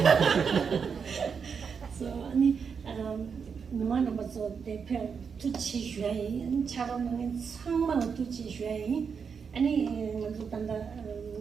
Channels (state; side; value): quieter; left; 6.2 dB